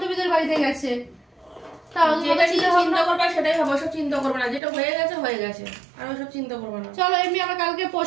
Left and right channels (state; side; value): drops out; left; at 4.6 s